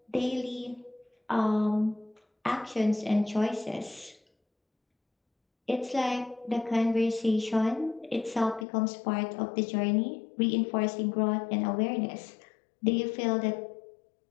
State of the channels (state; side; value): drops out; right; at 8.7 s